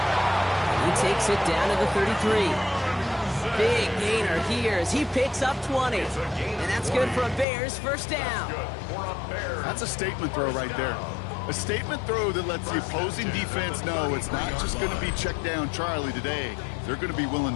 He takes it down to the 33. Big gainer here as he picks up 20. And that's good for a Bears first down. That's a statement throw right there. A statement throw that lets the opposing defense know it's not just going to be check down Charlie today. They're going to be willing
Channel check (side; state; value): right; drops out; at 7.5 s